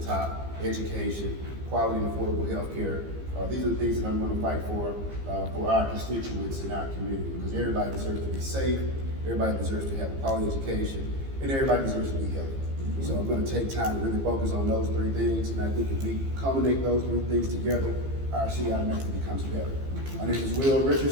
top, education, quality and affordable health care. These are the things that I'm going to fight for our constituents in our community, because everybody deserves to be safe, everybody deserves to have a quality education, and everybody deserves to be healthy. So I'm going to take time to really focus on those three things, and I think if we culminate those three things together, our city automatically becomes better. My name is Will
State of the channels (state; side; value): late; left; 15 ms